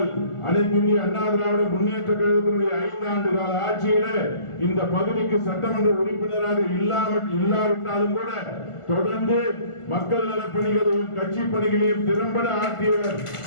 அனைத்து இந்திய அண்ணா திராவிட முன்னேற்ற கழகத்தினுடைய 5 ஆண்டு கால ஆட்சியில இந்த பகுதிக்கு சட்டமன்ற உறுப்பினராக இல்லாவிட்டாலும் கூட தொடர்ந்து மக்கள் நலப்பணிகளையும் கட்சி பணிகளையும் திறம்பட ஆற்றியவர்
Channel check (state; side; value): late; right; 1.5 ms